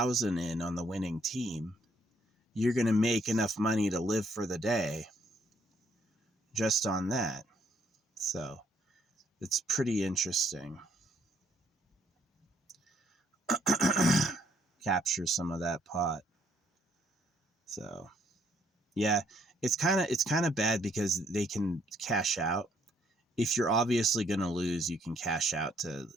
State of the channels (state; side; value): normal; both; correlation 0.68